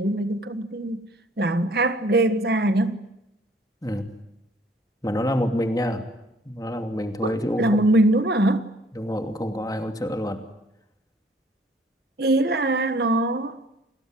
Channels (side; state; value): both; normal; correlation 0.57